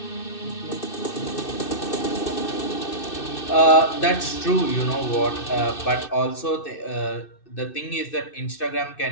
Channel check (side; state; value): right; late; 2.6 ms